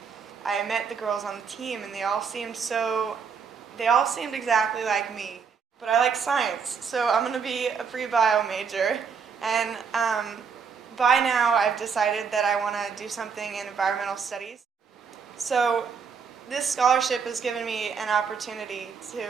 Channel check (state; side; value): quieter; left; 6.1 dB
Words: I met the girls on the team, and they all seemed exactly like me. But I like science, so I'm going to be a pre-bio major. And by now, I've decided that I want to do something in environmental studies. So this scholarship has given me an opportunity